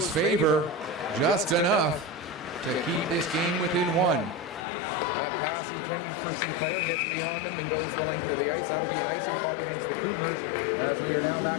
favor, just enough to keep this game within 1. That pass intended for Sinclair gets beyond him and goes the length of the ice. That'll be an icing call against the Cougars as we are now back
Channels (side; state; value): right; drops out; at 4.7 s